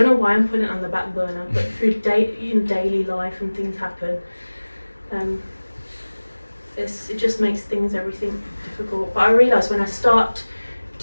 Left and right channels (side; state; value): both; inverted; correlation -1.00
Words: know why I'm putting it on the back burner, but through daily life and things happen, it just makes everything difficult. But I realise when I start